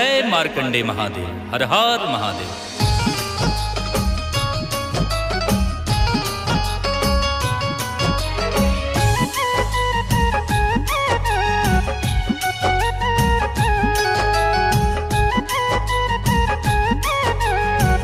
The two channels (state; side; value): identical; both; correlation 1.00